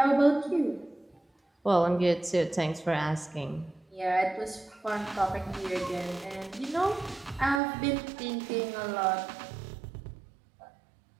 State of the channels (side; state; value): left; drops out; at 7.6 s